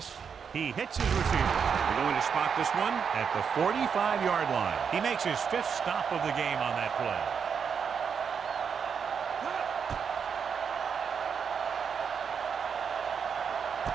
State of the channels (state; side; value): quieter; left; 6.7 dB